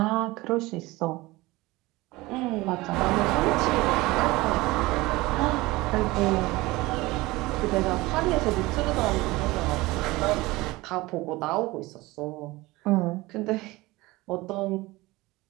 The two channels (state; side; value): quieter; left; 20.6 dB